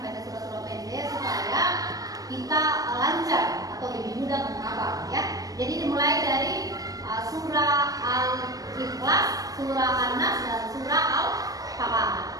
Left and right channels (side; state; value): left; late; 0.18 ms